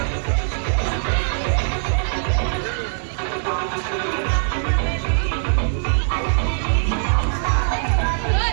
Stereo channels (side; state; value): left; silent; digital silence